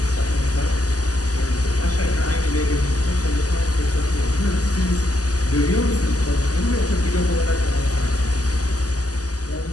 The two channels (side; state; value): right; late; 0.67 ms